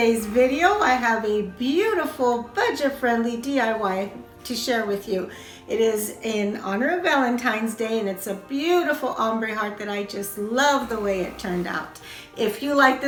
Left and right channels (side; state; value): both; identical; correlation 1.00